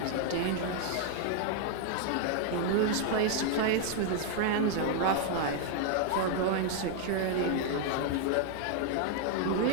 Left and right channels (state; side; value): different; both; correlation 0.00